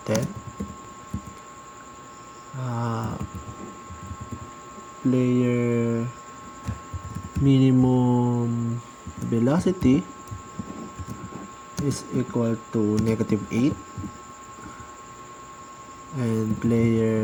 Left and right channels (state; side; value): identical; both; correlation 1.00